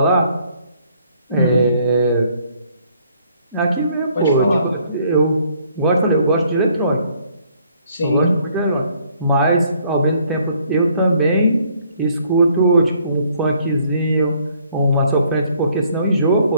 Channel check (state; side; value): inverted; both; correlation -0.64